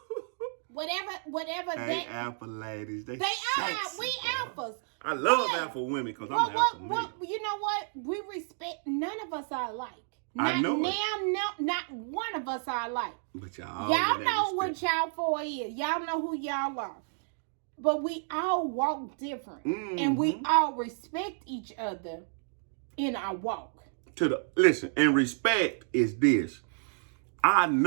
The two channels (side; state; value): left; silent; digital silence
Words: whatever they alpha ladies. They are. We alphas. I love alpha women because I'm alpha man. You know what? We respect. None of us are alike. I know not one of us are alike. But y'all know what y'all for is. Y'all know who y'all are. But we all walk different, and we all respect each other in our walk. Listen, and respect is this. I